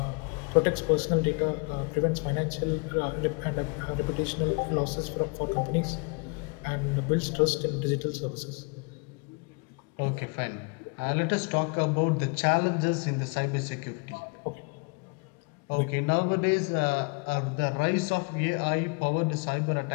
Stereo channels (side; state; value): right; quieter; 32.4 dB